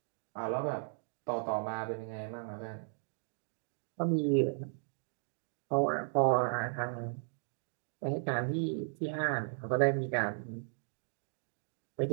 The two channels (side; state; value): left; silent; digital silence